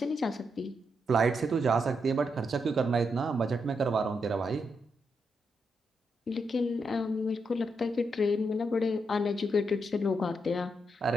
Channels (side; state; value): both; normal; correlation 0.81